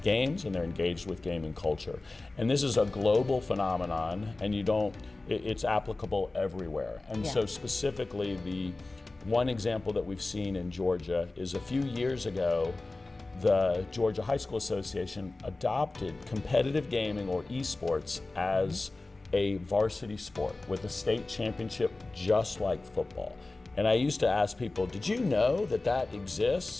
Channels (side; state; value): right; quieter; 3.2 dB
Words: games and they're engaged with gaming culture. And this is a global phenomenon, and it's applicable everywhere. And so specifically, the one example that we've seen in Georgia is a few years ago, the Georgia High School Association adopted competitive gaming or esports as a varsity sport with a state championship just like football. And I used to ask people, did you know that that